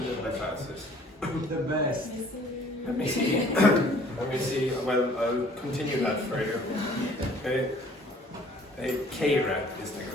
in the class is? The best. Let me see. Let me see. Well, I'll continue that further. Okay. K-rap is the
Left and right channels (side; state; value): both; normal; correlation 0.55